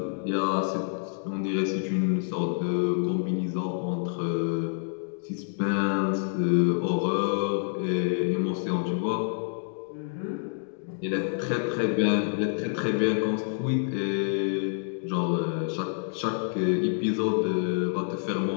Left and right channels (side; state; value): right; silent; digital silence